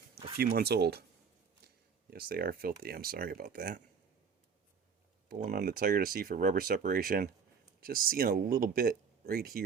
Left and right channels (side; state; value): left; quieter; 6.2 dB